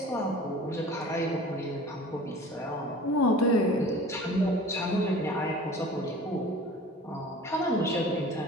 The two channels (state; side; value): normal; both; correlation 0.42